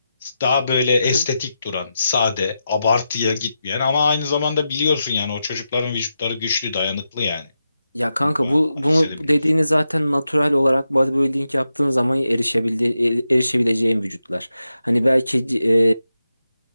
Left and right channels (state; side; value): inverted; both; correlation -0.88